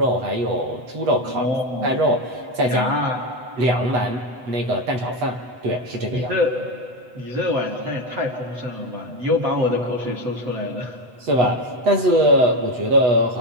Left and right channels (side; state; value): left; late; 8.0 ms